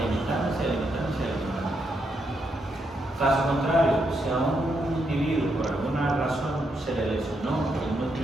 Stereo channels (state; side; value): normal; both; correlation 0.80